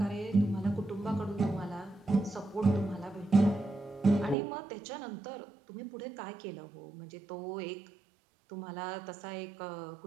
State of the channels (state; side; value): drops out; left; at 4.4 s